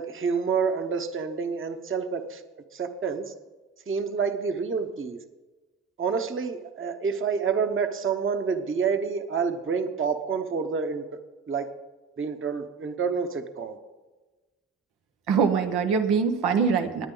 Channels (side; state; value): left; quieter; 5.5 dB